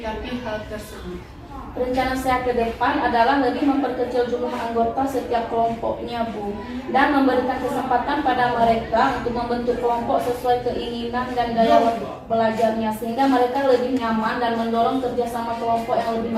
hal tersebut? Rencana saya ke depan adalah lebih memperkecil jumlah anggota setiap kelompoknya Bu, dan memberikan kesempatan pada mereka untuk membentuk kelompok sesuai keinginan dan gaya belajarnya, sehingga mereka lebih nyaman dan mendorong kerjasama kelompok yang lebih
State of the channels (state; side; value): identical; both; correlation 1.00